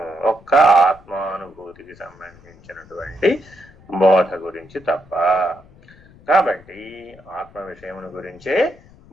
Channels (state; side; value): noise; left; rumble, 25 dB below the sound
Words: ఒక్క ఆత్మానుభూతికి సంబంధించినటువంటి బోధ గురించి తప్ప. కాబట్టి ఆత్మ విషయమును గురించే